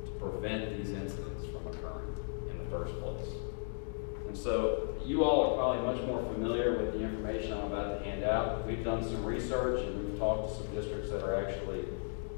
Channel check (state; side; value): silent; right; digital silence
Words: prevent these incidents from occurring in the first place. And so you all are probably much more familiar with the information I'm about to hand out. We've done some research and we've talked to some districts that are actually